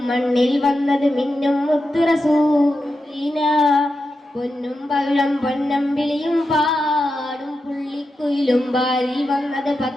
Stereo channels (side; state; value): both; normal; correlation 0.89